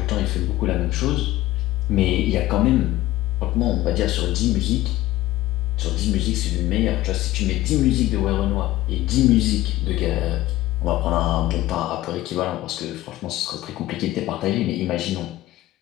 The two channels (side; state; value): right; quieter; 16.2 dB